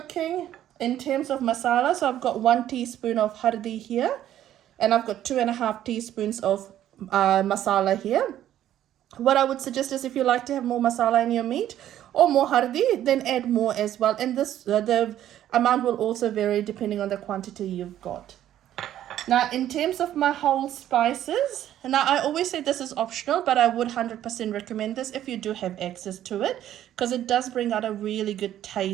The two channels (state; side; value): quieter; left; 11.9 dB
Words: In terms of masala, so I've got 1 teaspoon of hardi here, and I've got 2.5 teaspoons of masala here. What I would suggest is, if you like to have more masala in your meat or more hardi, then add more as well, and this the amount will also vary depending on the quantity you've got. Now in terms of my whole spices, now I always say this is optional, but I would 100% recommend this if you do have access to it, because it does bring out a really good